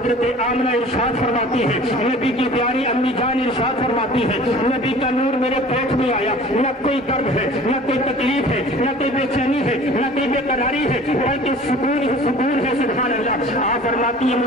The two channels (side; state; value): both; normal; correlation 0.45